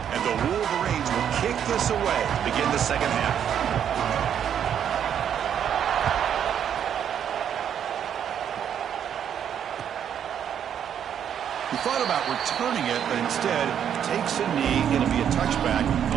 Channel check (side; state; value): left; quieter; 9.0 dB